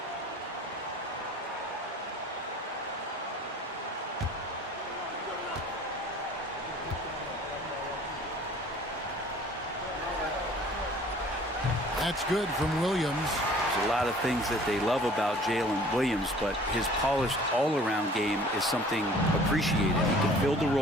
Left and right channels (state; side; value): normal; both; correlation 0.50